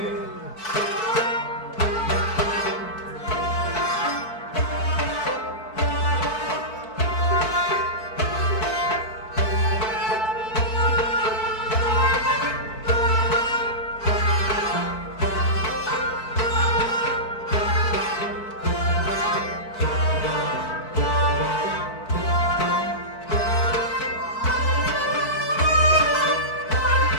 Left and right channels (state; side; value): late; right; 4.5 ms